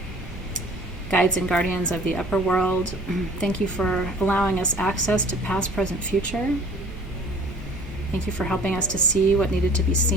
Guides and guardians of the upper world, thank you for allowing us access to past, present, future. Thank you for helping us to see what needed to be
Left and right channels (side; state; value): both; normal; correlation 0.49